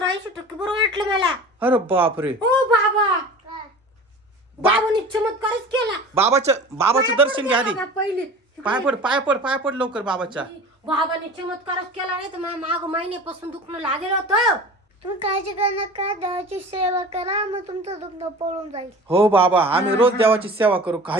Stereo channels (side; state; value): both; normal; correlation 0.38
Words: बरं वाटलं मला. अरे बापरे. ओ बाबा, बाबाने चमत्कारच केला. बाबाचं दर्शन घ्या आधी. बाबा पहिले पाय पड लवकर बाबाच्या. बाबाने चमत्कारच केला, नाही तर माग महिन्यापासून दुखणं लागेल होतं. तुम्ही काळजी करू नका, देवाची सेवा करा, मग तुमचं दुखणं पळून जाईल. हो बाबा, आम्ही रोज देवाची सेवा करू,